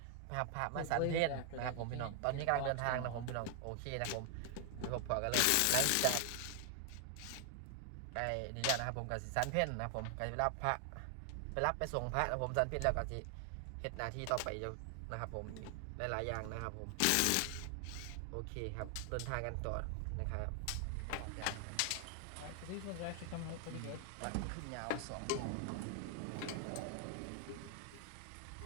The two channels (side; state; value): both; different; correlation 0.00